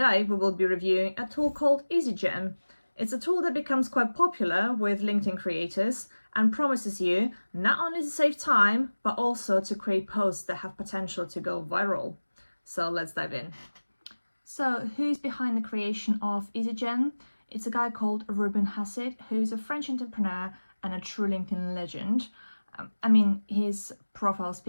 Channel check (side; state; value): both; inverted; correlation -1.00